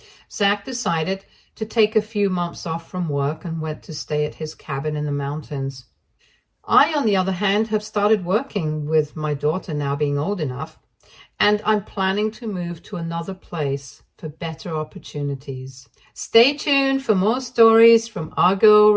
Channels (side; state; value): both; identical; correlation 1.00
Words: Zach decided to take a few months off from work and went to stay at his cabin in the mountains. I, on the other hand, have started working, with my daughter now being old enough, and I'm planning to move to another place for better opportunities. Stay tuned for more stories from Argo